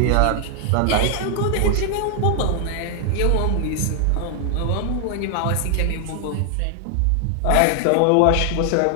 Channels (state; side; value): different; both; correlation 0.00